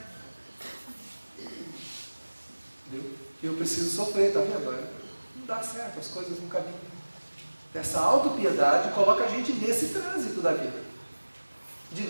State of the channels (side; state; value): both; inverted; correlation -1.00